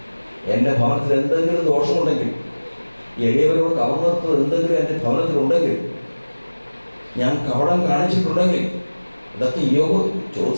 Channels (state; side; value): inverted; both; correlation -1.00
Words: എൻ്റെ ഭവനത്തിൽ എന്തെങ്കിലും ദോഷമുണ്ടെങ്കിൽ, എളിയവരോട് കവർന്നെടുത്തത് എന്തെങ്കിലും എൻ്റെ ഭവനത്തിലുണ്ടെങ്കിൽ, ഞാൻ കപടം കാണിച്ചിട്ടുണ്ടെങ്കിൽ, ഇതൊക്കെ യോബ്